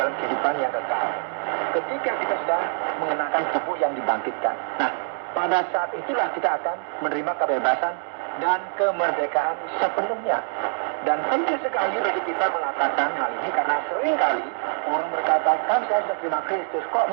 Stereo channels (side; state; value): left; silent; 62 dB below the other